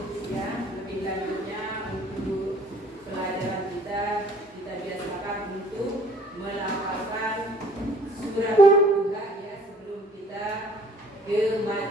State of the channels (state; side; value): normal; both; correlation 0.56